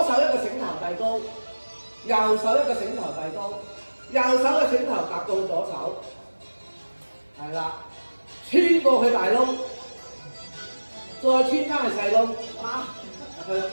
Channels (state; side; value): inverted; both; correlation -1.00